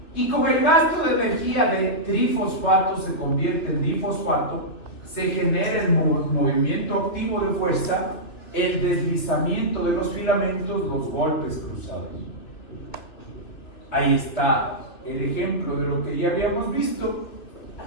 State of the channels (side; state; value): right; late; 2.9 ms